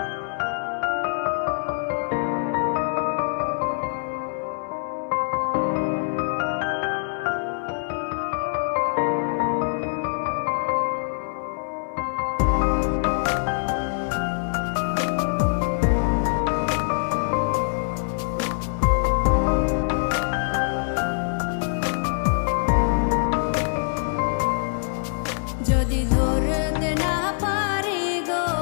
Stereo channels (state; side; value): silent; right; digital silence